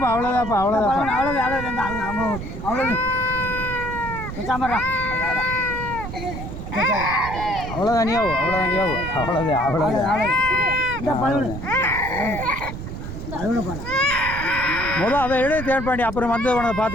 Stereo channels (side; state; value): right; noise; rumble, 8 dB below the sound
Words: அவ்வளோதான்ப்பா அவ்வளோதானியாவும் முதல் அதை எடுத்து தேன் பண்ணி அப்புறம் வந்து போனதை